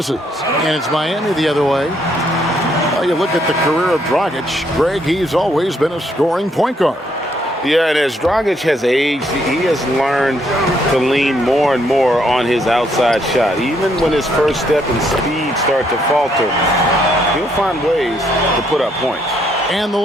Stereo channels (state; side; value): normal; both; correlation 0.72